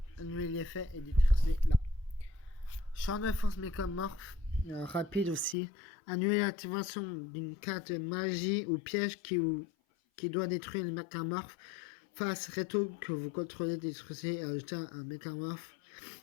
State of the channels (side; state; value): right; drops out; at 5.6 s